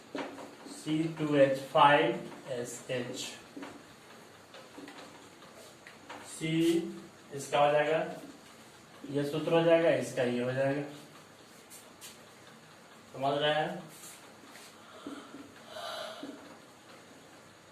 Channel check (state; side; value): identical; both; correlation 1.00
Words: C2H5SH। C इसका हो जाएगा, ये सूत्र हो जाएगा, इसका ये हो जाएगा। समझ रहे हैं।